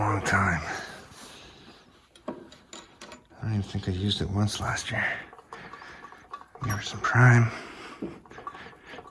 time. I don't even think I used it once last year. Give it some prime.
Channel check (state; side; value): identical; both; correlation 1.00